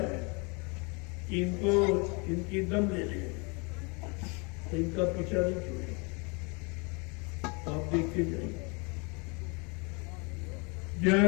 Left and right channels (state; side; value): quieter; right; 31.3 dB